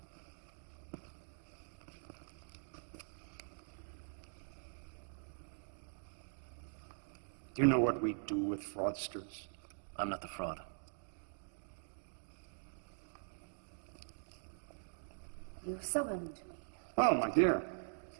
Do you know what we do with fraudsters? I'm not the fraud. You summoned me. Oh, my dear.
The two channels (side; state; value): left; silent; digital silence